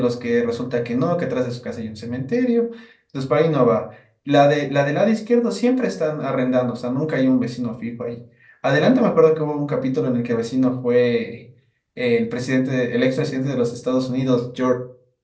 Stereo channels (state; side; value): identical; both; correlation 1.00